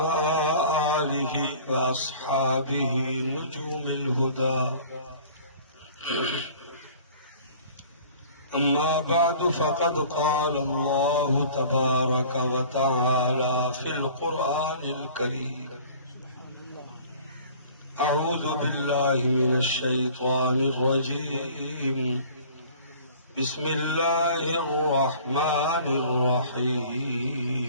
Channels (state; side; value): inverted; both; correlation -0.48